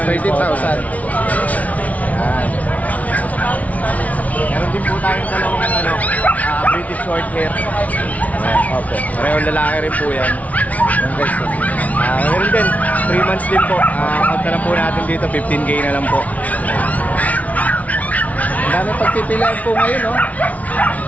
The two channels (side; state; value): right; late; 0.070 ms